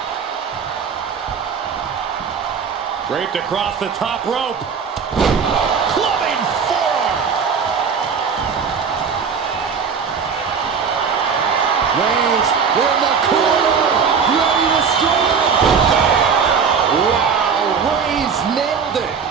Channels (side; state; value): left; quieter; 6.2 dB